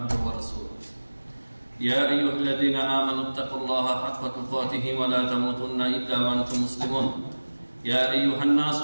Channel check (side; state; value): both; inverted; correlation -1.00